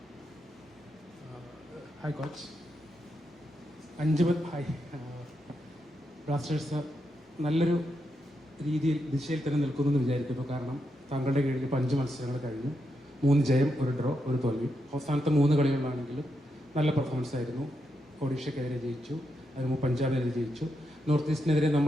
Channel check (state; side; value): normal; both; correlation 0.83